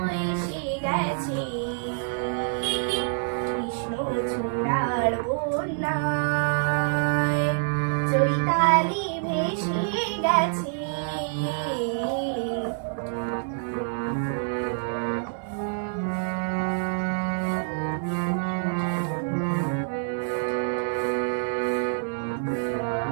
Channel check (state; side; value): silent; left; digital silence